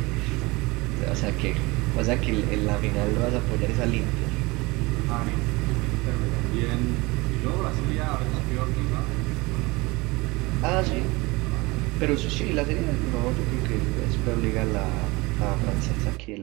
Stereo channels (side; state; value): left; quieter; 23.8 dB